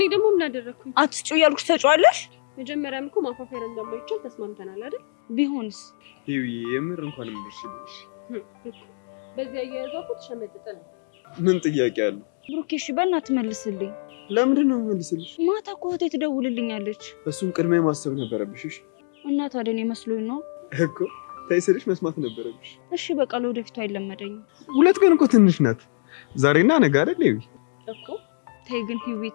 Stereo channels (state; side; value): silent; right; digital silence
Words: ደግሞ ምን አደረኩኝ? አትጩ ያልኩሽ ተጫዋለሽ። መጀመሪያም እኮ ማፋፈር እንደማይቻል ተስማምተናል አይደል? ቢሆንስ? ይሄ የምር እንኳን ምርሽልሽ። በዚህ አያያዟ እኮ ተሸመጥጠ ነው። ምን ጥያቄ አለ? ብሩኬ እሺ በእናትህ መልስልኝ። ለምንድን ነው መልስልሽ? ማታ እኮ እህቴ ትደውልልኛለች። እሱን ቅድሚያ ማሰብ ነበረብሽ። እሺ እና ታዲያ እኔ መስሎኝ ነው እኮ ታይስልሽ መስማት ነበረብሽ። እሺ በቃ ለወደፊቱ አይለመደኝም። ሁለት ቀን እኮ ትንሽ ናት። ዛሬና ነገ አይደል? ይሄ እኮ ተይ ግን ሂዊ